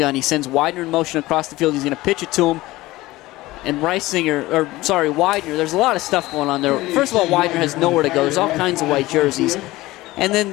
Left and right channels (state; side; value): quieter; right; 18.5 dB